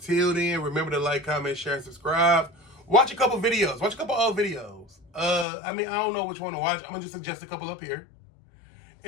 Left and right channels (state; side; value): drops out; right; at 5.5 s